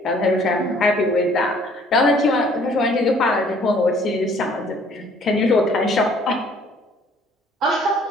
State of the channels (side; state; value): both; normal; correlation 0.58